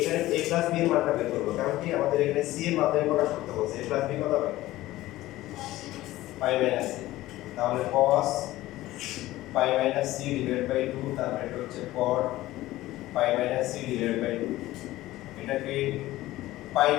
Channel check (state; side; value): quieter; right; 16.6 dB